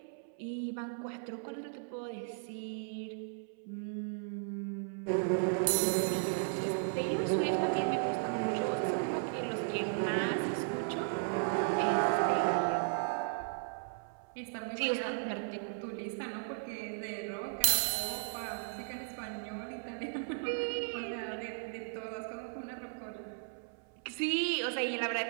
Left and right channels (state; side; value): silent; left; 54 dB below the other